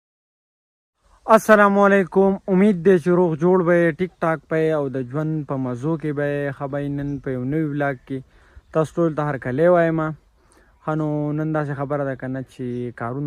السلام علیکم، امید دی چې روغ جوړ به یې، ټیک ټاک به یې او د ژوند په مزو کې به یې. ښه به یې نن په یو نوي ولاګ کې تاسو ټول ته هرکلی وایم. ښه نو نن داسې خبره ده که نه چې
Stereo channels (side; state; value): both; identical; correlation 1.00